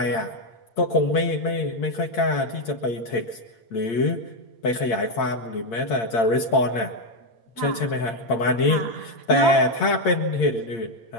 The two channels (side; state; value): right; late; 8.8 ms